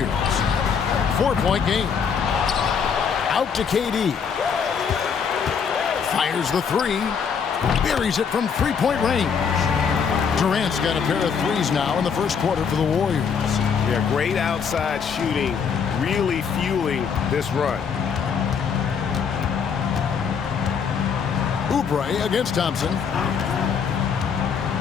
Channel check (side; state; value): right; quieter; 6.5 dB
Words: 4-point game. Out to KD. Fires the three. Buries it from three-point range. Durant's got a pair of threes now in the first quarter for the Warriors. Yeah, great outside shooting, really fueling this run. Oubre against Thompson.